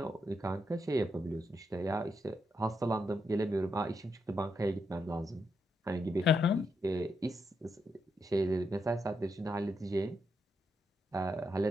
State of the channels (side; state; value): both; normal; correlation 0.81